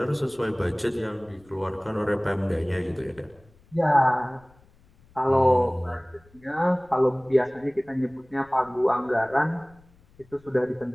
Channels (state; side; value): noise; left; rumble, 28 dB below the sound